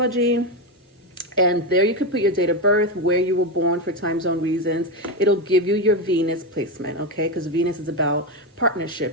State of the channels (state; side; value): normal; both; correlation 0.11